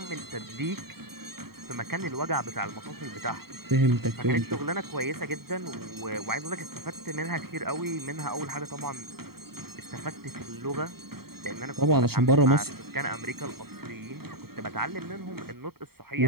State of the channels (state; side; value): late; left; 0.95 ms